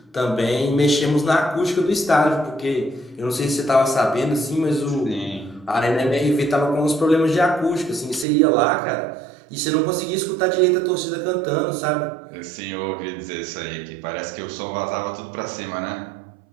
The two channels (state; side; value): drops out; left; at 8.2 s